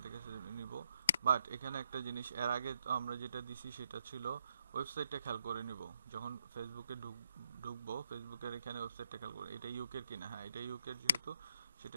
থেকে নিব। বাট এখানে একটা জিনিস, এর আগে আমরা যেটা দিছি সেটা ছিল ওয়েবসাইটটা খেয়াল করে নিব, যখন ফেসবুকে ঢুকবো ফেসবুকের এখানে ওয়েবসাইটটা খেয়াল করে, এটা ইউকের কিনা। হ্যাঁ, এটা ইউকের, যেহেতু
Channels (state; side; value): inverted; both; correlation -0.78